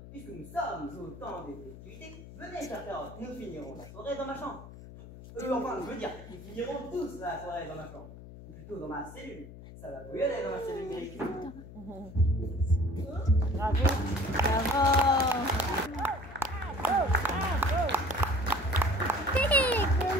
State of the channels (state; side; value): noise; left; hum, 15 dB below the sound